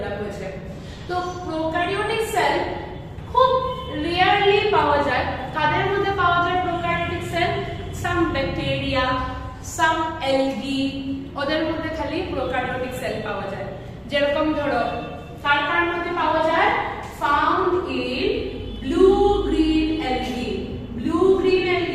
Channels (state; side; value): identical; both; correlation 1.00